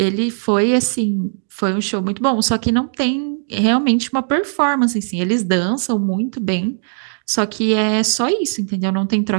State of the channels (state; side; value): silent; left; digital silence